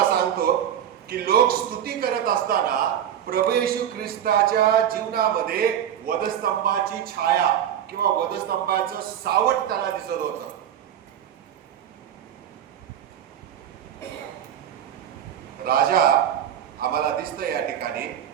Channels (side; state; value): left; quieter; 10.0 dB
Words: सांगतो की लोक स्तुती करत असताना प्रभू येशू ख्रिस्ताच्या जीवनामध्ये वधस्तंभाची छाया किंवा वधस्तंभाचं सावट त्याला दिसत होतं। राजा आम्हाला दिसतं या ठिकाणी